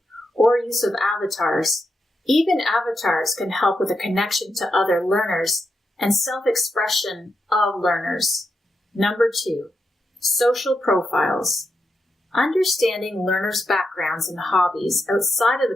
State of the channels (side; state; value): both; normal; correlation 0.85